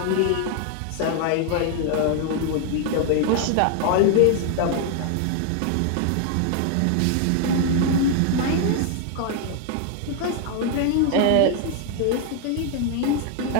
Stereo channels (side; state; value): both; different; correlation 0.00